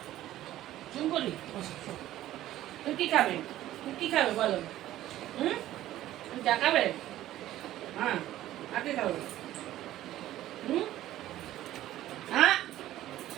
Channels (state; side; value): quieter; left; 14.0 dB